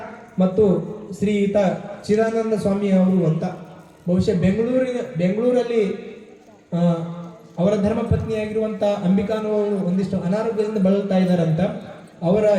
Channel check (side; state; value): both; identical; correlation 1.00